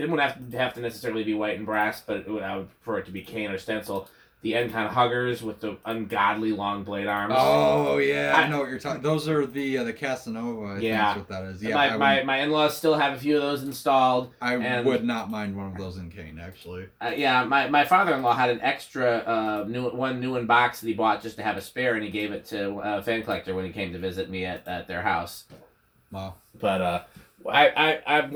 wouldn't have to necessarily be white and brass, but I would prefer it to be cane or stencil. The Encon Huggers with the ungodly long blade arms. Oh yeah, I know what you're talking. Those are the Casanova. I think Yeah. that's what that is. Yeah, My in-laws still have a few of those installed. I would not mind one of those in cane actually. Yeah, my father-in-law had an extra new in box that he bought just to have a spare, and he gave it to a fan collector when he came to visit me at their house. Wow. But I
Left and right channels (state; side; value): identical; both; correlation 1.00